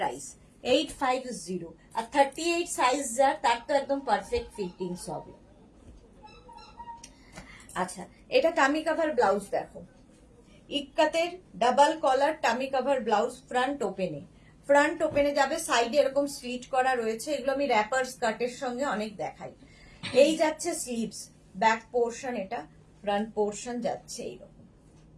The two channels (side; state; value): both; identical; correlation 1.00